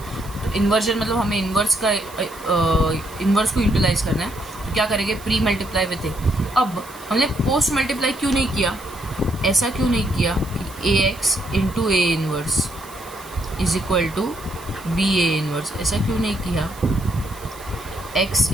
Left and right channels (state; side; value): noise; right; hiss, 20 dB below the sound